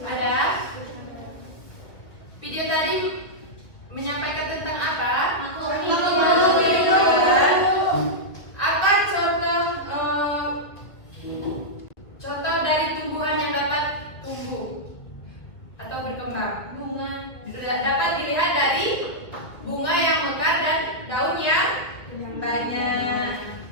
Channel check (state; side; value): late; right; 2.1 ms